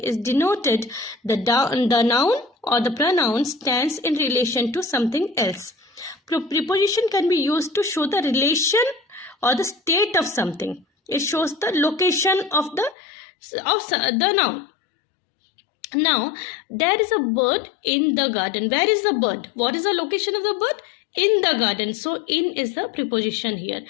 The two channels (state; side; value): drops out; right; at 13.0 s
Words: denoted. The noun or the pronoun stands in relation to something else. Preposition can be used to show the relation or the state of something. It shows the location of the noun. Now, there is a bird in the garden. Where is the bird? What is the location of the bird? In the garden. So, in is the preposition here.